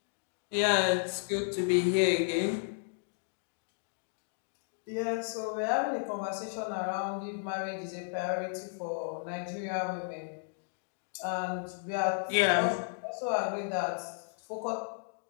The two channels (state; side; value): silent; right; digital silence